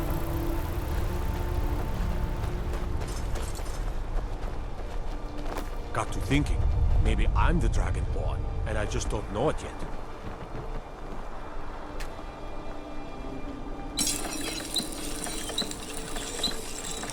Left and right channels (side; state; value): both; identical; correlation 1.00